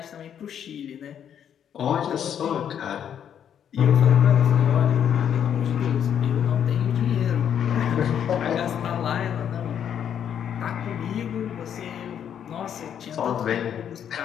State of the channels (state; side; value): quieter; right; 8.9 dB